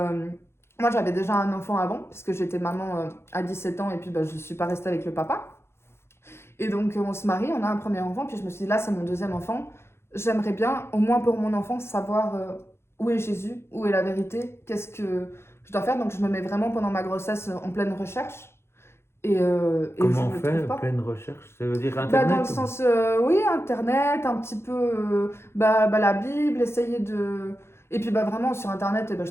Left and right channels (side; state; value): right; late; 0.12 ms